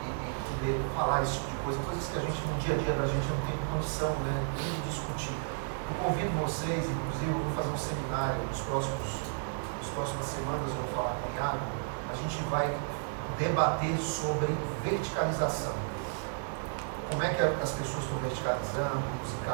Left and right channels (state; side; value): silent; left; digital silence